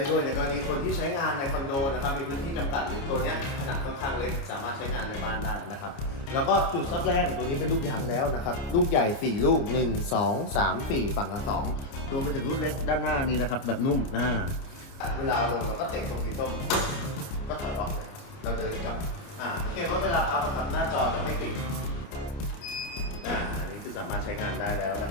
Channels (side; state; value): right; late; 29 ms